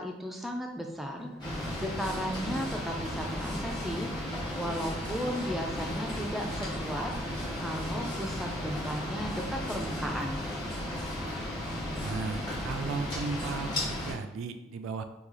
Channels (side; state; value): both; normal; correlation 0.65